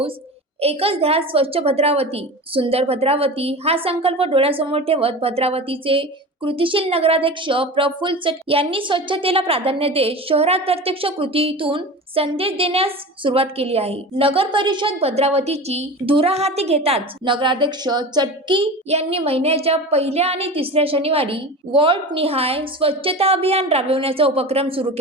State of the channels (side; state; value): both; normal; correlation 0.31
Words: एकच ध्यास स्वच्छ भद्रावती, सुंदर भद्रावती हा संकल्प डोळ्यासमोर ठेवत भद्रावतीचे कृतीशील नगराध्यक्ष प्रफुल्ल चटके यांनी स्वच्छतेला प्राधान्य देत शहरात प्रत्यक्ष कृतीतून संदेश देण्यास सुरुवात केली आहे. नगर परिषद भद्रावतीची धुरा हाती घेताच नगराध्यक्ष चटकी यांनी महिन्याच्या पहिल्या आणि तिसऱ्या शनिवारी वॉर्ड निहाय स्वच्छता अभियान राबविण्याचा उपक्रम सुरू